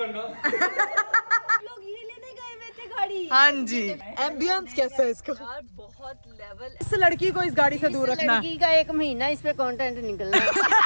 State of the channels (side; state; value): both; inverted; correlation -1.00